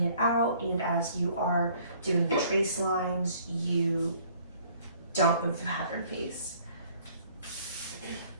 it out and as you are doing the trace lines, you don't move the pattern piece.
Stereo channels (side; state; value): both; inverted; correlation -0.58